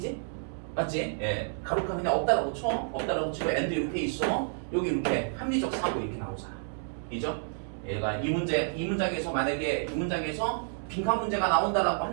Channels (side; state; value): left; silent; 58 dB below the other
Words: 맞지? 예. 가로카 그냥 없다라고 쳐. 없다라고 치고 엔드 이렇게 있어. 여기 이렇게 합리적 사고 이렇게 나오잖아. 이죠? 얘가 이 문장에서 만약에 이 문장에서 빈칸 문제가 나온다라고